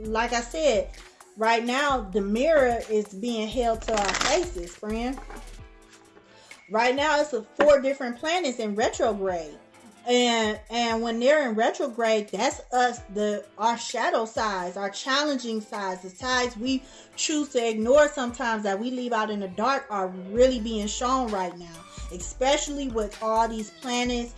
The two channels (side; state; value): both; identical; correlation 1.00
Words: I said, right now, the mirror is being held to our faces, friend. Right now, it's 4 different planets in retrograde. And when they're in retrograde, that's us, our shadow sides, our challenging sides, the sides we choose to ignore sometimes that we leave out in the dark are really being shown right now, especially with all these planets